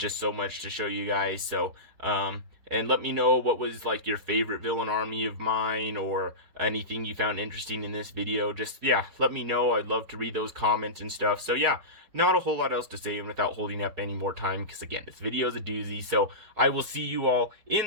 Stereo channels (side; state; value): left; late; 4.8 ms